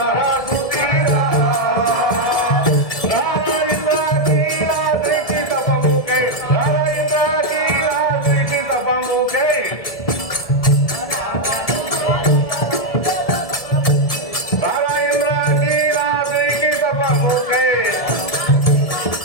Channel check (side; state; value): right; late; 1.7 ms